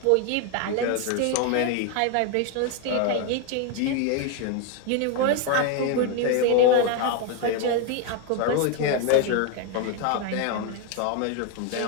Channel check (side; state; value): both; different; correlation 0.01